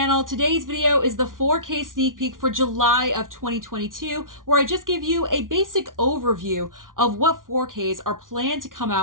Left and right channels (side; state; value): left; late; 0.89 ms